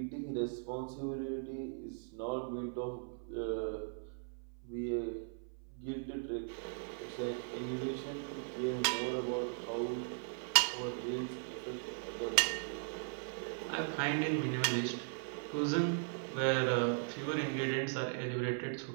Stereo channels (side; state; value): left; silent; 52 dB below the other